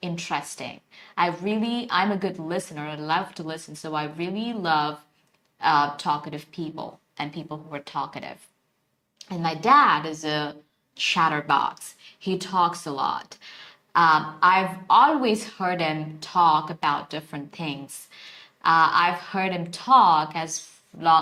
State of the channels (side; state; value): both; identical; correlation 1.00